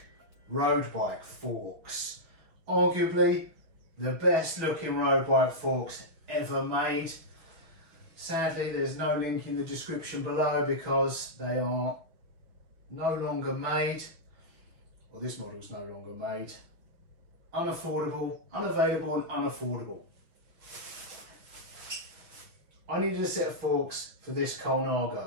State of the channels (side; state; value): left; late; 6.2 ms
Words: road bike forks. Arguably the best looking road bike forks ever made. Sadly there's no link in the description below because they are no longer made. Well, this model is no longer made. Unaffordable, unavailable and unaffordable. I needed a set of forks for this